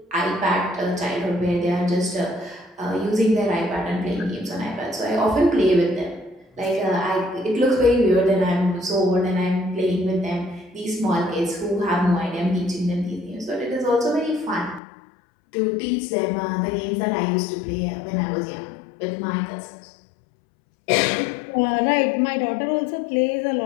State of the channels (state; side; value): drops out; right; at 14.8 s